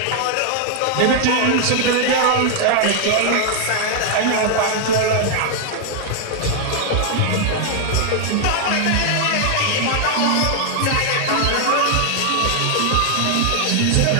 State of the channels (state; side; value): different; both; correlation 0.00